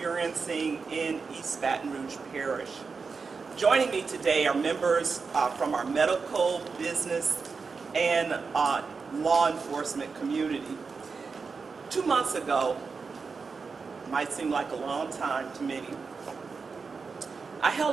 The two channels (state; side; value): quieter; left; 4.9 dB